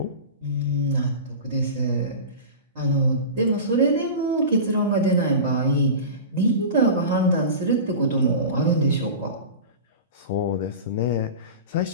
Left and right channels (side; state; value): both; inverted; correlation -0.31